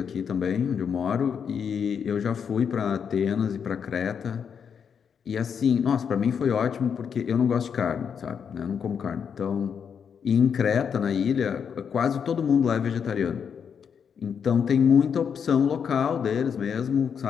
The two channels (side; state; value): right; quieter; 7.1 dB